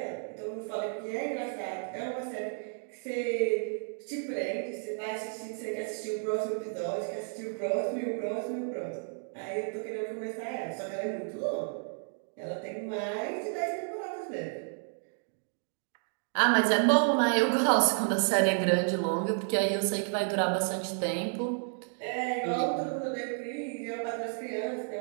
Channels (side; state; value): left; silent; 57 dB below the other